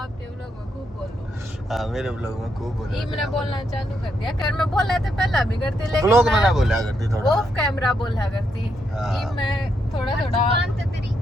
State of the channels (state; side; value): normal; both; correlation 0.79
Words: व्लॉग में खूब बोलो। हाँ मेरे व्लॉग में खूब बोल ये मैंने बोलना चालू कर दिया, कर मैं बोला था पहला भी करती लेकिन व्लॉग में ना बोला करती थोड़ा ऑफ कैमरा बोला करती। हाँ। ये मैं थोड़ा जुबान तो तेरी